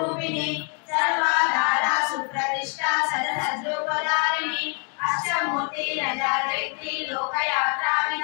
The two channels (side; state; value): right; quieter; 39.3 dB